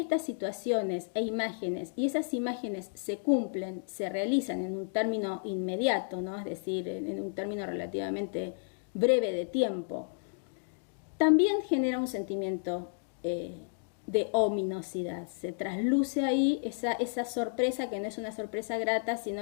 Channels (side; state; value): right; silent; digital silence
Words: situaciones e imágenes, y esas imágenes se cumplen, se realizan en un término inmediato, ¿no? Es decir, en un término relativamente breve de tiempo, también genera un sentimiento de ominosidad. Se trasluce ahí esa sorpresa, que no es una sorpresa grata,